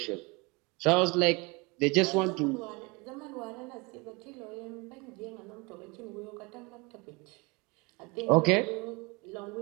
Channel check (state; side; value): quieter; left; 27.2 dB